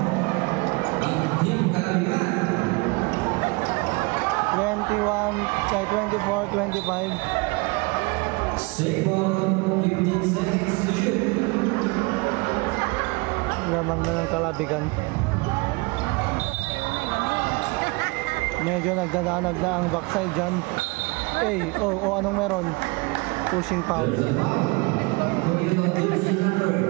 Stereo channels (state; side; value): quieter; left; 27.0 dB